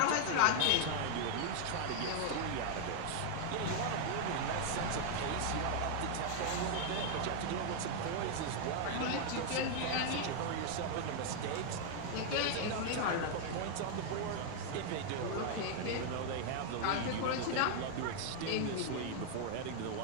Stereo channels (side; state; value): both; different; correlation 0.00